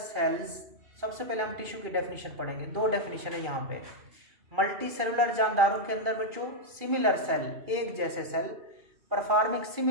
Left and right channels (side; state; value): left; late; 2.4 ms